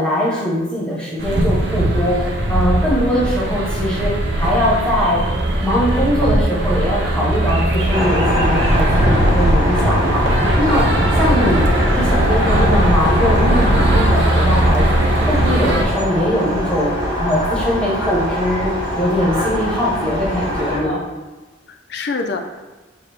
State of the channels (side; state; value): both; normal; correlation 0.61